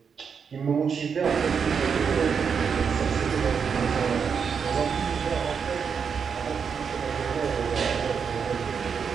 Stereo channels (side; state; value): left; quieter; 6.5 dB